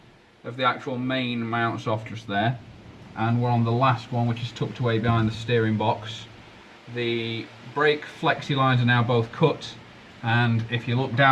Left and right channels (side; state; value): both; identical; correlation 1.00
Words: of the actual main mounts off just there, and we're on the last one, which is tucked away behind the steering box. The brake flexi lines are now both cut, And if you look